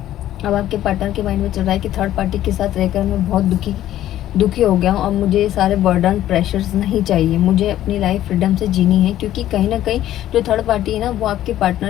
अब आपके पार्टनर के माइंड में चल रहा है कि थर्ड पार्टी के साथ रहकर मैं बहुत दुखी हो गया हूँ, अब मुझे ये सारे बर्डन प्रेशर्स नहीं चाहिए, मुझे अपनी लाइफ फ्रीडम से जीनी है। क्योंकि कहीं ना कहीं जो थर्ड पार्टी है ना, वो आपके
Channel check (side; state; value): right; quieter; 12.9 dB